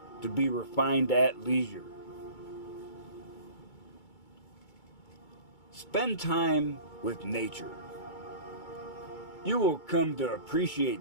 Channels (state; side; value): late; right; 2.3 ms